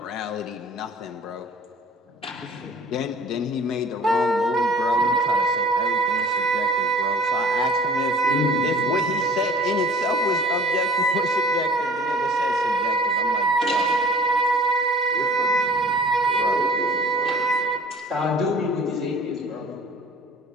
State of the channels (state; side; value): normal; both; correlation 0.47